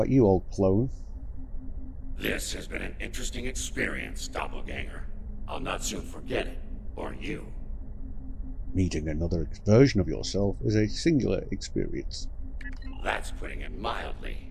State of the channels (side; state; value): both; identical; correlation 1.00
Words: you, old clone? This has been an interesting experience, Doppelganger. I'll not soon forget it, or you. Meeting another version of yourself is a singular experience. That's putting it